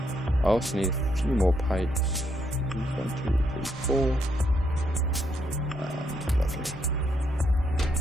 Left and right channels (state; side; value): normal; both; correlation 0.75